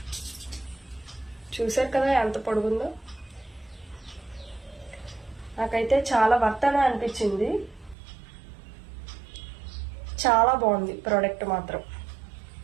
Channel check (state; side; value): drops out; left; at 8.0 s